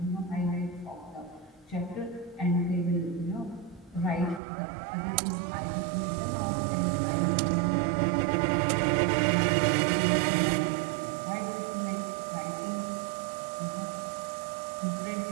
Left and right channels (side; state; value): left; drops out; at 4.4 s